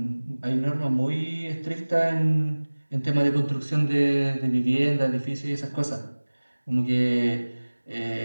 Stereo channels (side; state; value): both; inverted; correlation -1.00